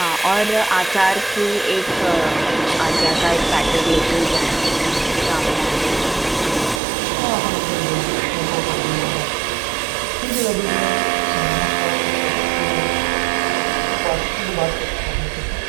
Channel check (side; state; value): left; drops out; at 6.8 s